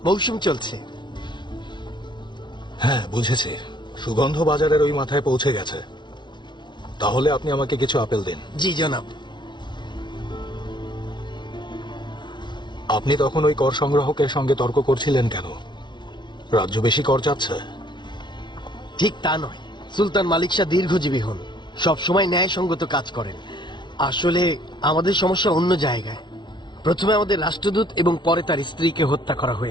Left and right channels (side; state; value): right; late; 0.22 ms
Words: মৌসুম চলছে। হ্যাঁ, বুঝেছি। সুগন্ধ বাজারের ওই মাথায় পৌঁছে গেছে। তাহলে আপনি আমাকে কিছু আপেল দিন। জি জনাব। আপনি তখন ওই কর সংগ্রাহকের সঙ্গে তর্ক করছিলেন কেন? রাজ্য বেশি কর চাচ্ছে? ঠিক তা নয়, সুলতান মালিক শাহ দীর্ঘজীবী হন, সবসময় ন্যায়সঙ্গত কাজ করেন। আসলে আমাদের সমস্যা অন্য জায়গায়। প্রথমে আমাদের রাষ্ট্রদূত এবং পরে তার স্ত্রীকে হত্যা করা